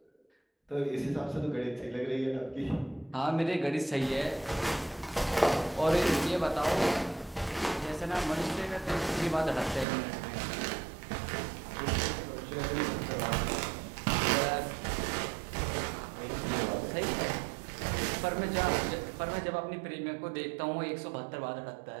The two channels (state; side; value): drops out; left; at 9.9 s